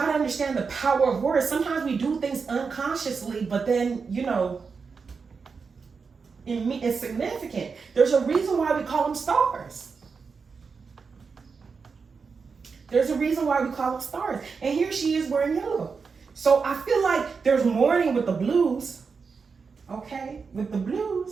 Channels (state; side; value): quieter; left; 5.2 dB